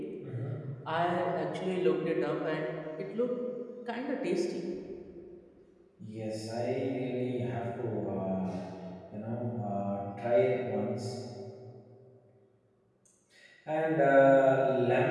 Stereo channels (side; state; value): both; identical; correlation 1.00